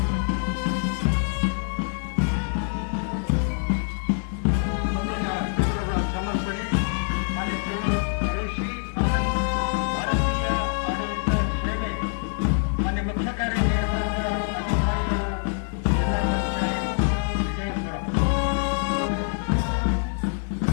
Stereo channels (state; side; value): silent; right; 61 dB below the other